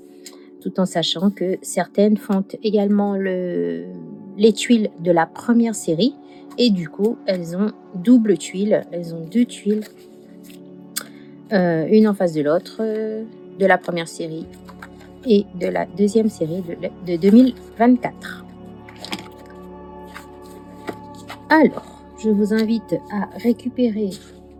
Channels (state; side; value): identical; both; correlation 1.00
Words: tout en sachant que certaines font également les tuiles de la première série. Et du coup, elles ont double tuile, elles ont deux tuiles, une en face de l'autre, de la première série et de la deuxième série de 2024. Alors, je vous invite à récupérer